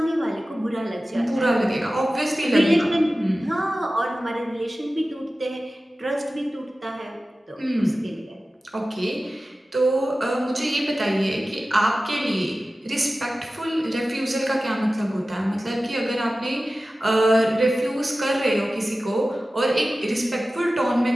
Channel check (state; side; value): normal; both; correlation 0.95